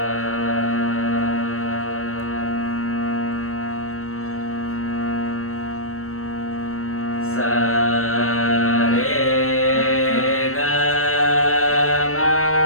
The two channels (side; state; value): right; late; 0.63 ms